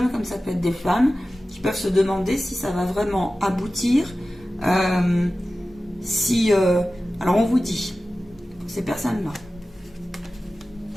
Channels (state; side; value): normal; both; correlation 0.95